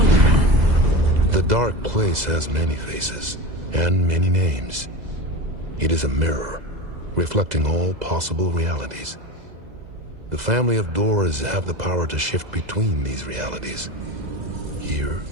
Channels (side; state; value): left; late; 2.0 ms